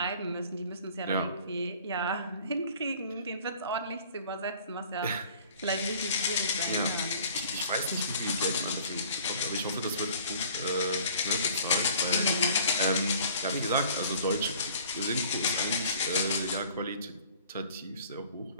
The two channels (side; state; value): both; inverted; correlation -0.51